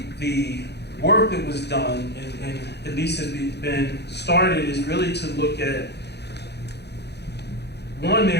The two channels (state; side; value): late; right; 0.49 ms